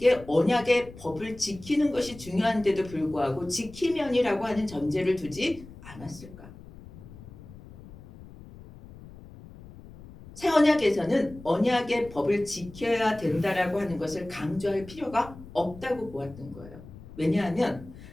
언약의 법을 지키는 것이 중요한데도 불구하고 지키면이라고 하는 전제를 두지 않았을까? 새 언약에서는 언약의 법을 지켜야 된다라고 하는 것을 강조할 필요가 없다고 보았던 거예요. 왜냐하면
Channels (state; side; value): noise; left; rumble, 18 dB below the sound